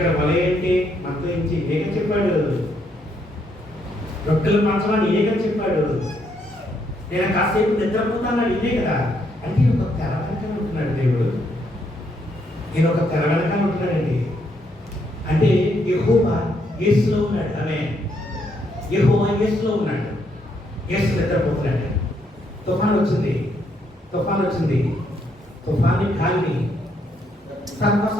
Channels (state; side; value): normal; both; correlation 0.74